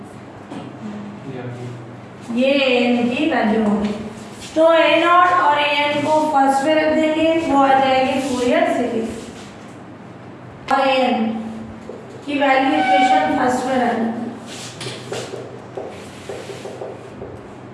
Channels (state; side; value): identical; both; correlation 1.00